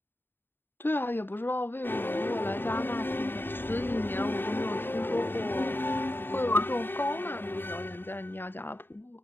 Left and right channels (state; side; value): late; right; 0.099 ms